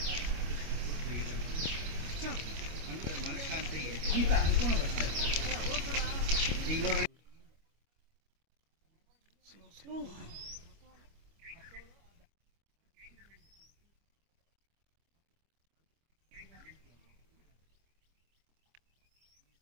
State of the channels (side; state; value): left; late; 25 ms